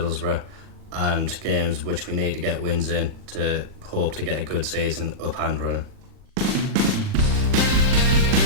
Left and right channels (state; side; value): late; left; 40 ms